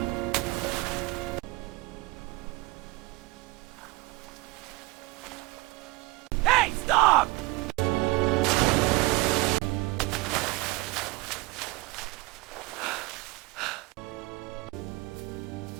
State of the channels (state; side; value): quieter; left; 22.4 dB